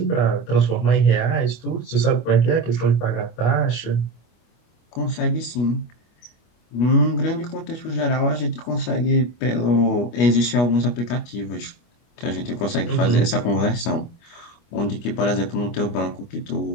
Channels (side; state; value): right; late; 25 ms